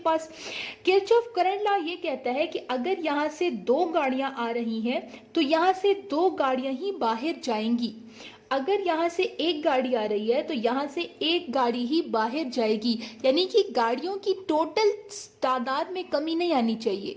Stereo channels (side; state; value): both; identical; correlation 1.00